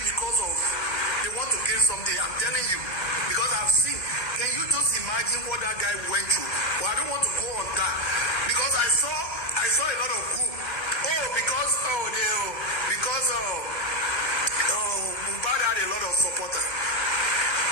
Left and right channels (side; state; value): right; late; 1.3 ms